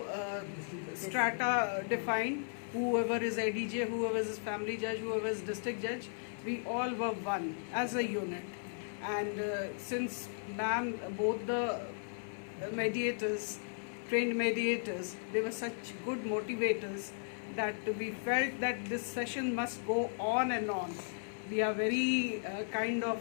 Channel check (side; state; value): right; silent; 54 dB below the other